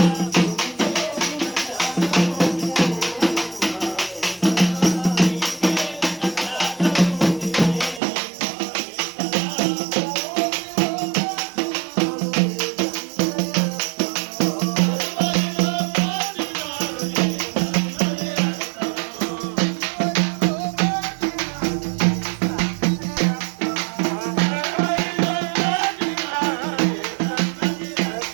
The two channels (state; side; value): drops out; left; at 8.0 s